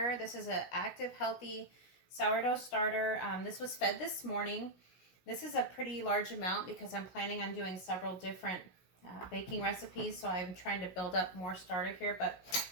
This is an active, healthy sourdough starter. This was fed this morning. This is a pretty large amount because I'm planning on doing several different baking recipes. So I'm trying to build up more starter here. But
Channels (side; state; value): right; late; 16 ms